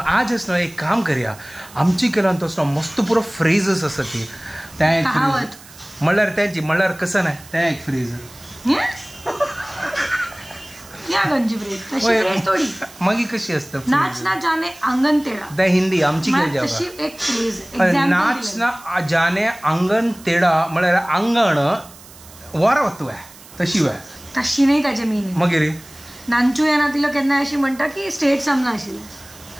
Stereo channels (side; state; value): right; noise; hiss, 21 dB below the sound